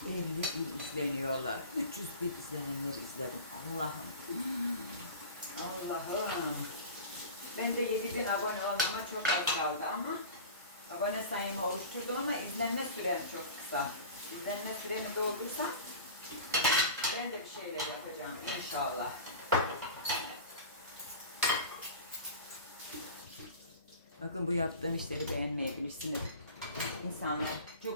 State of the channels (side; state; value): both; inverted; correlation -0.35